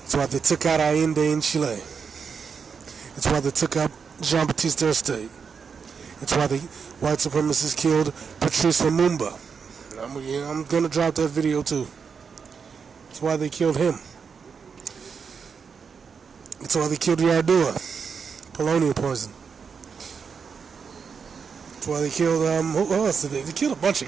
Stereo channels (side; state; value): left; quieter; 6.0 dB